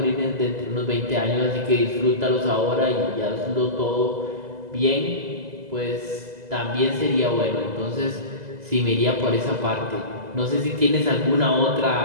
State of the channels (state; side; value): late; left; 2.0 ms